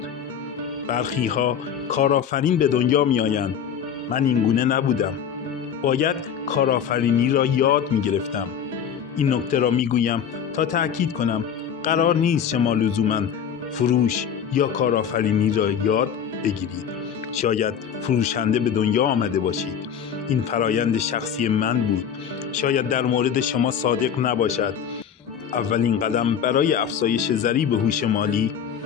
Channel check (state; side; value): quieter; right; 8.1 dB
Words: برخی‌ها کارآفرین به دنیا می‌آیند. من اینگونه نبودم. باید کارآفرینی را یاد می‌گرفتم. این نکته را می‌گویم تا تأکید کنم قرار نیست شما لزوماً فروش یا کارآفرینی را یاد بگیرید. شاید فروشنده به دنیا آمده باشید. این فرایند شخصی من بود. شاید در مورد شما صادق نباشد. اولین قدم برای افزایش ضریب هوش مالی: